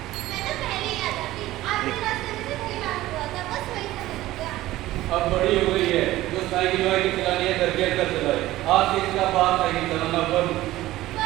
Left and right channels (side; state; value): left; quieter; 16.1 dB